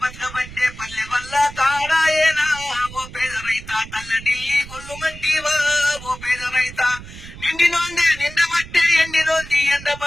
బతకబట్టే పల్లె వల్ల తాడాయేనా ఓ పేద రైత తల్లడి గొల్లు మంటివా ఓ పేద రైత నిండినోంది నిండబట్టే ఎండినోంది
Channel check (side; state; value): right; noise; rumble, 15 dB below the sound